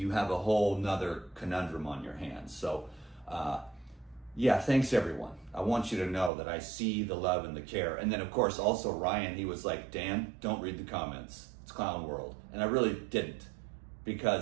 have a whole nother conundrum on your hands. So, yeah, thanks everyone. I want you to know that I see the love and the care. And then of course, also Ryan, he was like, Dan, don't read the comments. It's clown world. And I really didn't,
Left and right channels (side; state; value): left; drops out; at 6.3 s